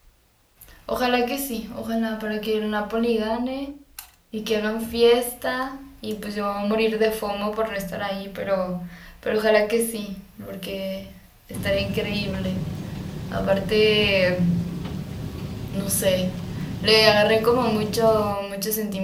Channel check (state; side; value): identical; both; correlation 1.00